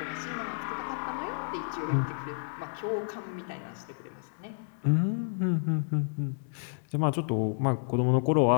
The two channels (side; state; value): right; silent; digital silence